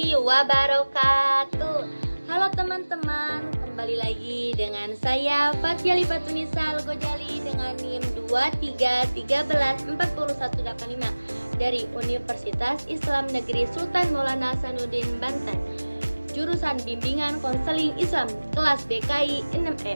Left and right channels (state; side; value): inverted; both; correlation -1.00